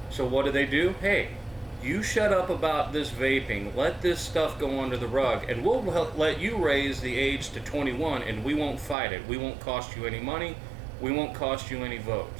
So what do? Hey, you shut up about this vaping. Let this stuff go under the rug, and we'll let you raise the age to 21, and we won't fight it. We won't cost you any money. We won't cost you any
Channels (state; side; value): drops out; left; at 9.0 s